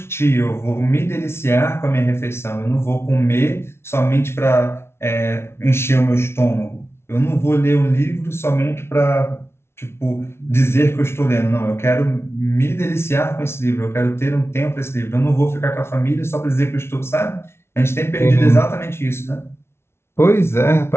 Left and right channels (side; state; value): right; late; 0.12 ms